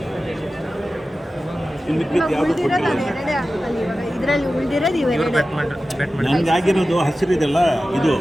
ಇನ್ನು ಯಾವುದು ಇದರಲ್ಲಿ ಉಳಿದಿರೋದು ಇವೆರಡೇ. ನನಗೆ ಆಗಿರೋದು ಹಸಿರಿದೆಲ್ಲ, ಇದು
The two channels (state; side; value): normal; both; correlation 0.94